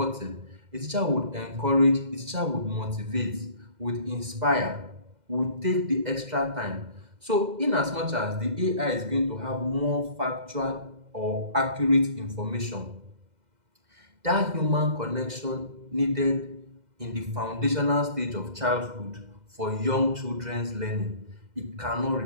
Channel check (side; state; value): left; late; 2.0 ms